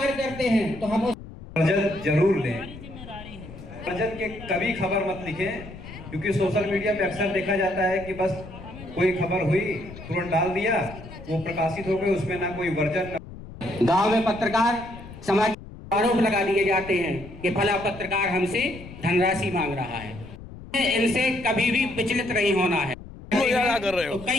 करते हैं तो हम उस बजट जरूर लें। बजट के कभी खबर मत लिखें, क्योंकि सोशल मीडिया पे अक्सर देखा जाता है कि बस कोई खबर हुई तुरंत डाल दिया, वो प्रकाशित हो गई, उसमें ना कोई वर्जन। गांव में पत्रकार समाज आरोप लगा दिए जाते हैं कि फला पत्रकार हमसे धनराशि मांग रहा है। इनसे कभी भी विचलित नहीं होना है। कर रहे हो तो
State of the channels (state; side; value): noise; left; rumble, 15 dB below the sound